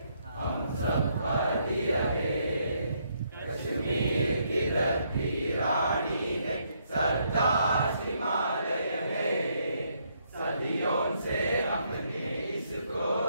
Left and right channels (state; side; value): inverted; both; correlation -0.73